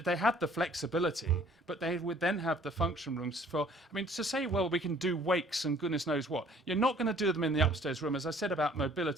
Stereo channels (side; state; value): both; normal; correlation 0.56